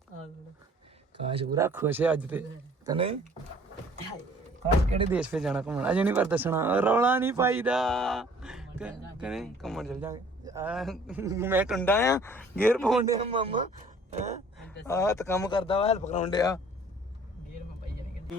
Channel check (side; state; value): both; normal; correlation 0.54